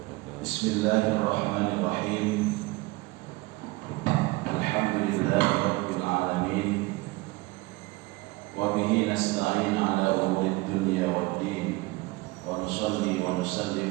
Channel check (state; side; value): quieter; left; 22.2 dB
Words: Bismillahirrahmanirrahim. Alhamdulillahi rabbil alamin. Wa bihi nasta'in ala umurid dunya waddin. Wa nusalli wa